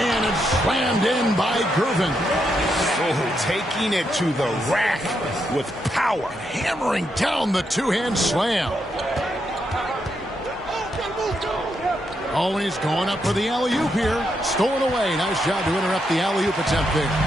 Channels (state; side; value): normal; both; correlation 0.81